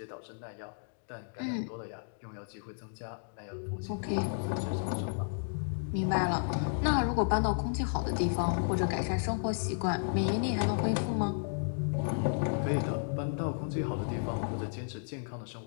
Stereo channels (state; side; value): silent; right; digital silence